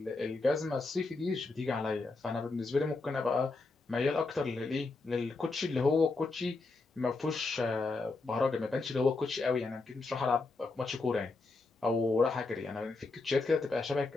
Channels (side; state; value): right; quieter; 3.6 dB